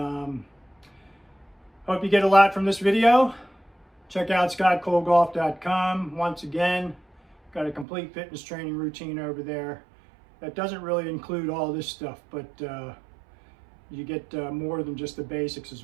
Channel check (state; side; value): drops out; left; at 7.9 s